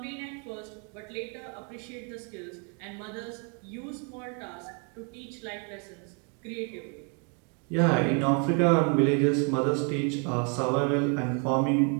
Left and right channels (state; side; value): quieter; left; 38.2 dB